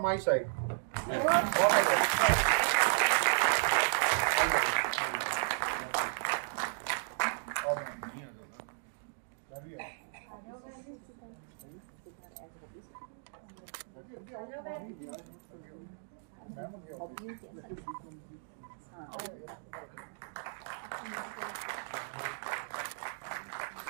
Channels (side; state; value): left; silent; digital silence